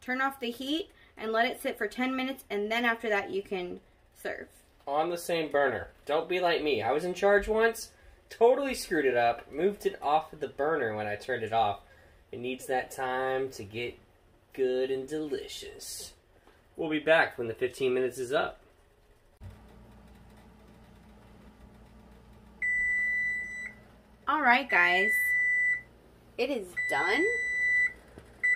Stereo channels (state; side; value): identical; both; correlation 1.00